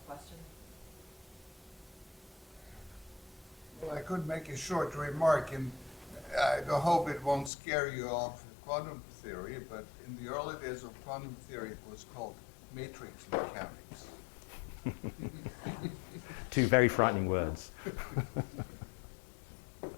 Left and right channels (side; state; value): right; drops out; at 7.5 s